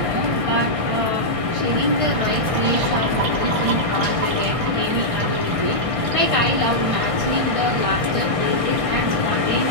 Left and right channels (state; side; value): late; left; 1.6 ms